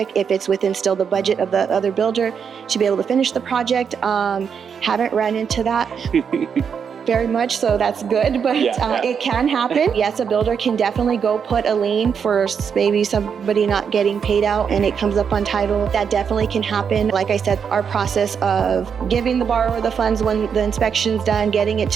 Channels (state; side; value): quieter; left; 6.9 dB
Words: if it's within still the budget of the other builder to be able to finish the project. Haven't run into that very much, so that's good, but it can happen. Yes, a builder can definitely go put a lien for maybe somebody not getting paid out and it comes up on title. That definitely can happen. Like I said, our process of giving the borrower the funds when the inspection's done, getting it